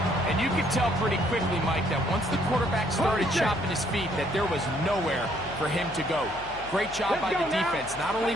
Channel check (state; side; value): noise; left; hum, 17 dB below the sound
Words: And you could tell pretty quickly, Mike, that once the quarterback started chopping his feet, that there was nowhere for him to go. Great job by the defense, not only